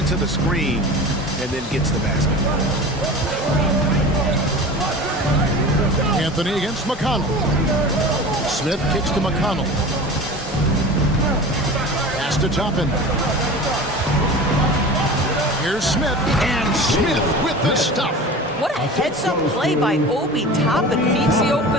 the screen, and then gets the basket. Anthony against McConnell. Smith kicks to McConnell. Pass to Toppin. Here's Smith, and Smith with the stuff. What a heads-up play by Obi Toppin. Feeds the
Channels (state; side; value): normal; both; correlation 0.35